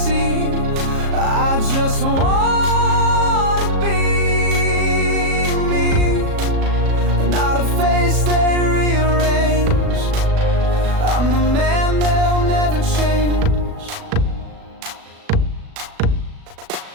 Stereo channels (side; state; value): left; late; 37 ms